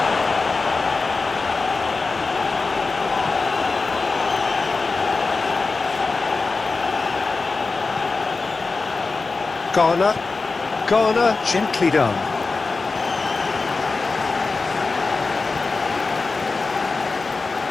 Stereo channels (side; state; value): right; quieter; 4.0 dB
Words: Garner, gently done.